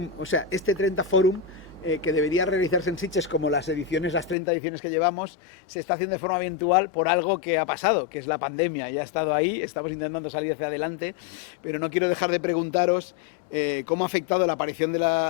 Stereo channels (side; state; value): right; drops out; at 4.4 s